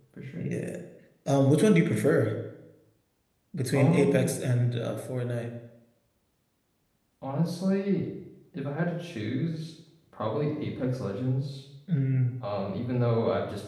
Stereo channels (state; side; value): identical; both; correlation 1.00